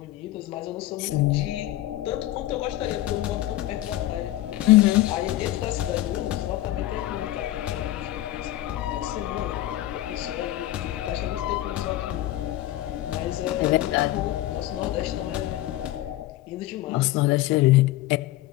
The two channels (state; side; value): quieter; right; 15.3 dB